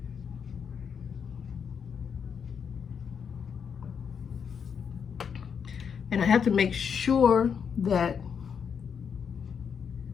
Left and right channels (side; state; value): right; quieter; 6.9 dB